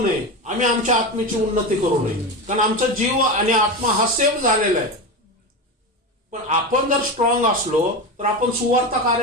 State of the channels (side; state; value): both; normal; correlation 0.21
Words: नये, आम्ही आमच्या आत्मेची उन्नती करू नये. कारण आमचा जीव आणि आत्मा हा सेव्ह झालेला आहे. पण आपण जर स्ट्रॉंग असलो तर आपण सुवार्थ